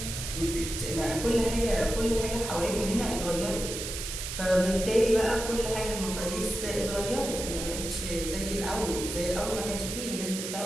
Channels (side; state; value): right; noise; hiss, 6 dB below the sound